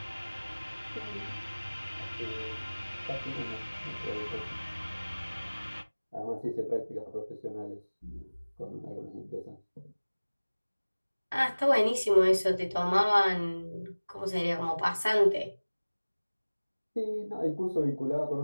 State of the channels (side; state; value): both; inverted; correlation -1.00